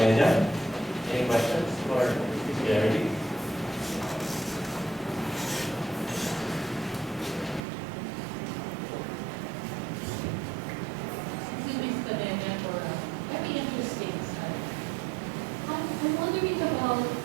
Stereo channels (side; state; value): left; drops out; at 7.6 s